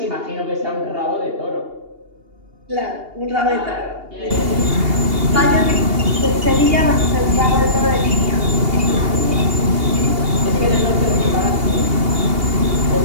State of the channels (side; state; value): left; late; 2.8 ms